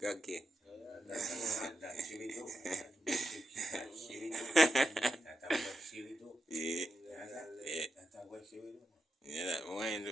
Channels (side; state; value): both; normal; correlation 0.86